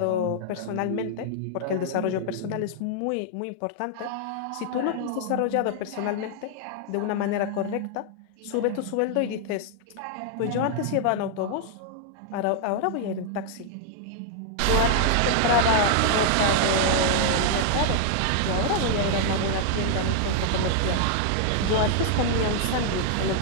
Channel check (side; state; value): both; different; correlation 0.00